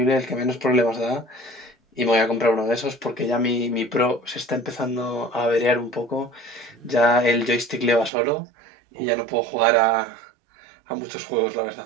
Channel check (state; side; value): drops out; left; at 8.1 s